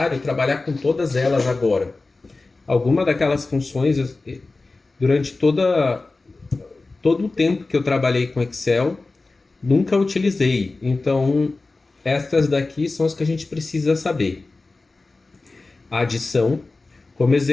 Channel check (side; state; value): right; quieter; 3.5 dB